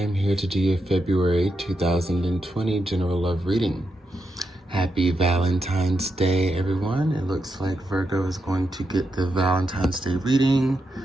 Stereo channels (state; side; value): normal; both; correlation 0.84